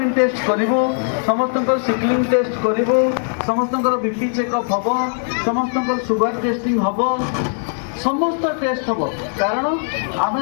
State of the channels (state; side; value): silent; right; 66 dB below the other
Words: ଟେଷ୍ଟ କରିବୁ, ସମସ୍ତଙ୍କର ସିକ୍ଲିଂ ଟେଷ୍ଟ କରିବୁ, ସମସ୍ତଙ୍କର ବିପି ଚେକଅପ୍ ହେବ, ସମସ୍ତଙ୍କର ସୁଗାର ଟେଷ୍ଟିଂ ହେବ, ସମସ୍ତ ଟେଷ୍ଟ ହେବ। କାରଣ ଆମେ